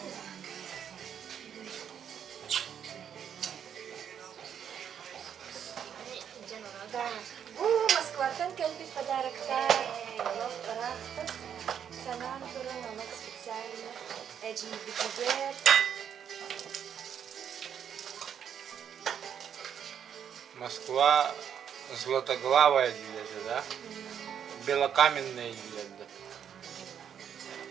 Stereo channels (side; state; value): left; quieter; 8.5 dB